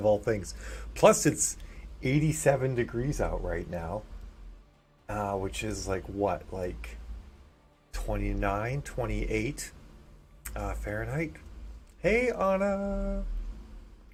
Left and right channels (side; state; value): both; identical; correlation 1.00